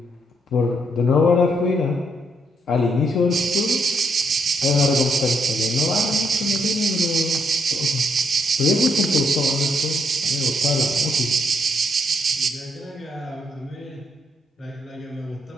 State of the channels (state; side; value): normal; both; correlation 0.75